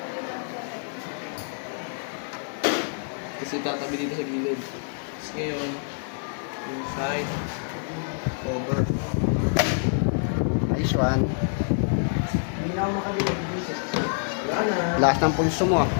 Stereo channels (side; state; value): right; silent; digital silence